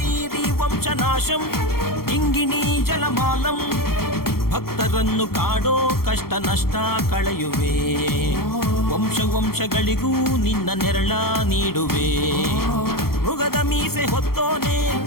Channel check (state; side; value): late; right; 0.94 ms